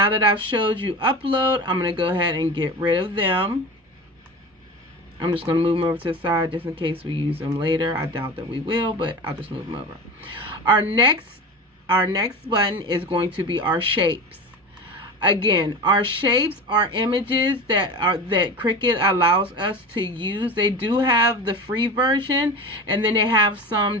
that I've showed you upload, I'm going to go ahead and get rid of them. I'm just going to move them over to the side just in case we use them later. I doubt that we will, but I'll just move them over. Our next button is going to be our shapes. Again, our shapes are images that Cricut allows us to use. They do have the free version, and then they have some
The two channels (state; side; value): normal; both; correlation 0.30